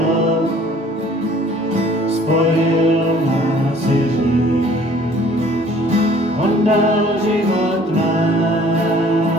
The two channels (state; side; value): normal; both; correlation 0.54